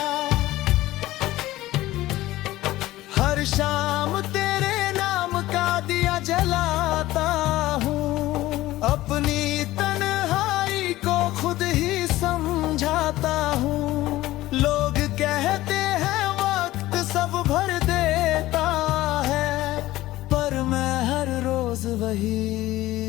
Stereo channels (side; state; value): right; quieter; 16.6 dB